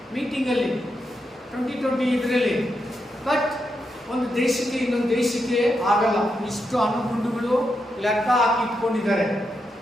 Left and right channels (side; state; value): both; normal; correlation 0.84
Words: ಮೀಟಿಂಗಲ್ಲಿ 2020 ಇದರಲ್ಲಿ. ಬಟ್ ಒಂದು ದೇಶಕ್ಕೆ ಇನ್ನೊಂದು ದೇಶಕ್ಕೆ ಆಗಲ್ಲ. ಇಷ್ಟು ಅಣುಗುಂಡುಗಳು ಲೆಕ್ಕ ಹಾಕಿ ಇಟ್ಕೊಂಡಿದ್ದಾರೆ.